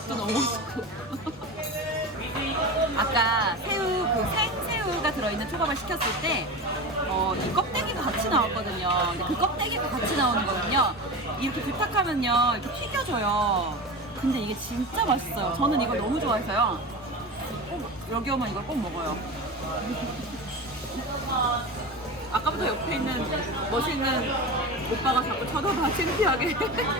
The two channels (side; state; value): both; normal; correlation 0.27